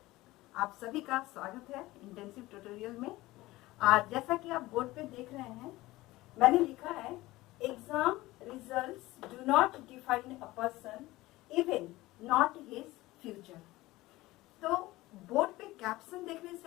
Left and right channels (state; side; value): quieter; right; 18.7 dB